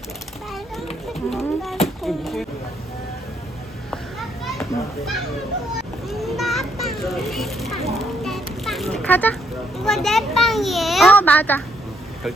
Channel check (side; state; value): both; normal; correlation 0.73